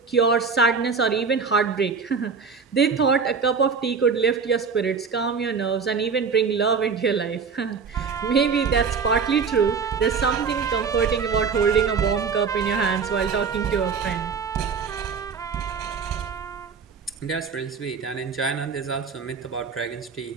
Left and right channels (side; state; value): left; quieter; 5.6 dB